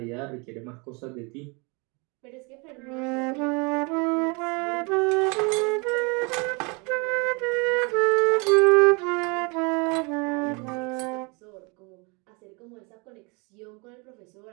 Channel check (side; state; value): left; quieter; 30.4 dB